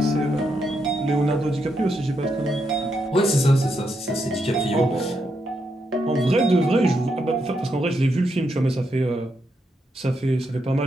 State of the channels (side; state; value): both; normal; correlation 0.81